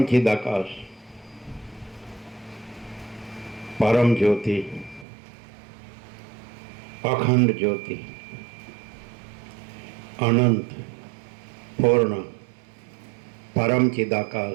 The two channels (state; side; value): drops out; left; at 5.1 s